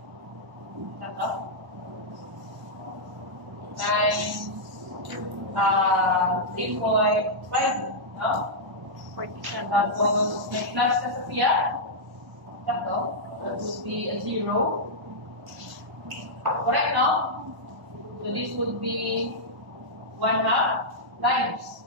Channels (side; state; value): left; late; 1.1 ms